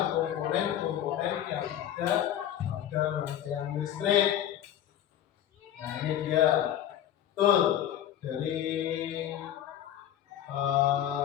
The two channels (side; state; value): right; quieter; 11.1 dB